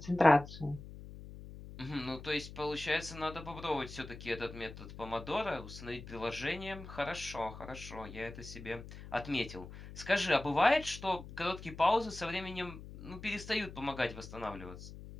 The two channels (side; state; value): left; noise; hum, 13 dB below the sound